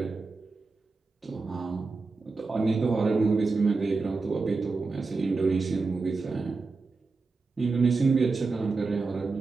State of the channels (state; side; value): quieter; left; 4.0 dB